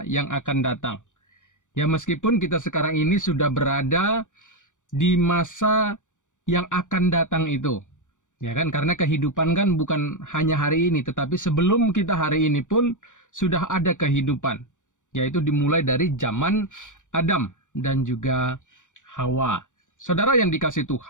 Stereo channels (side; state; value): right; late; 0.86 ms